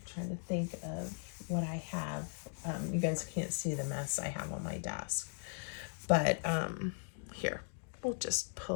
to think of what I have. You guys can't see the mess I have on my desk, but here, we'll just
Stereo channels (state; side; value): silent; right; digital silence